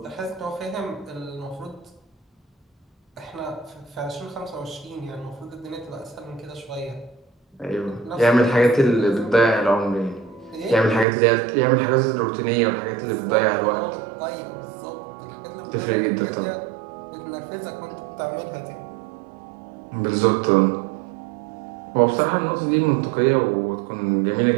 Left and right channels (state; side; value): drops out; left; at 11.1 s